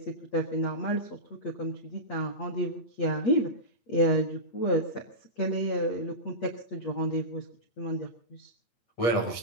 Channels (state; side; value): late; right; 8.4 ms